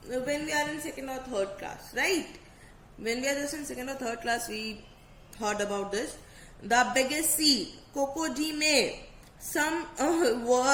when we are in 2nd or 3rd class, right? When we are just in 2nd or 3rd class, we heard about this. The biggest sea, crocodile. Some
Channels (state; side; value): identical; both; correlation 1.00